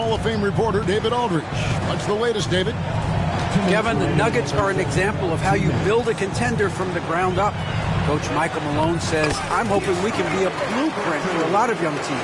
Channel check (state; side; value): identical; both; correlation 1.00